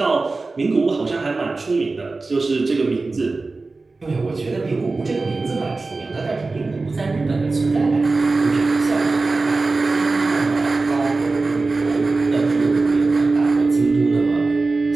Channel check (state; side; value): quieter; left; 3.6 dB